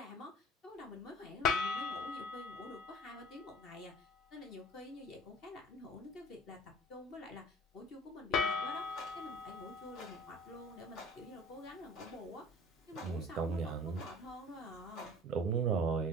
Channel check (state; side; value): normal; both; correlation 0.45